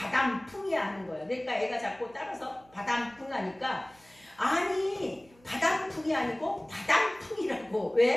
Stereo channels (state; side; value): noise; right; hum, 29 dB below the sound